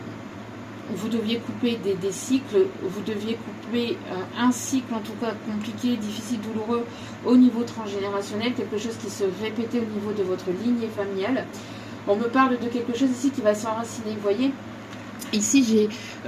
vous deviez couper des cycles, vous deviez couper un cycle en tout cas compliqué, difficile, douloureux au niveau transgénérationnel, quelque chose qui se répétait au niveau de votre lignée familiale. On me parle de quelque chose ici qui va s'enraciner, vous voyez. Ici, j'ai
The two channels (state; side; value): identical; both; correlation 1.00